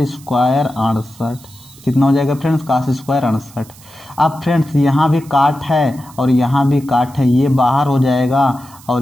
स्क्वायर 68, कितना हो जाएगा फ्रेंड्स कास स्क्वायर 68। अब फ्रेंड्स यहाँ भी काट है और यहाँ भी काट है, ये बाहर हो जाएगा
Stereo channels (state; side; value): noise; right; hiss, 23 dB below the sound